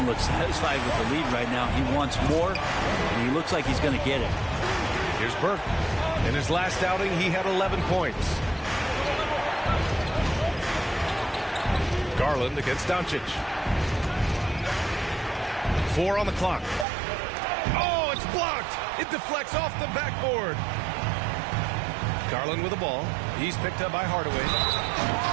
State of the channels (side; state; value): left; drops out; at 16.9 s